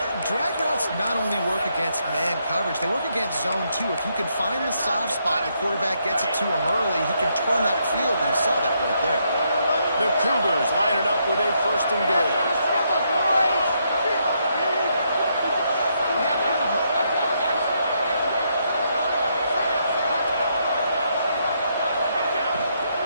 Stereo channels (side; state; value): both; inverted; correlation -0.76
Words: drag routes not only work against man coverage, they work against zone too. If you can find the soft spot, the quarterback gets it to him early, he can turn that field, and you saw that right there. The Cougars line it up with a 1st and goal.